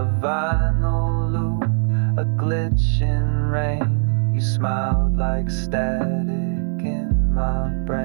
vinyl loop, a glitch in rain. You smiled like static in my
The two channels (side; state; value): left; silent; digital silence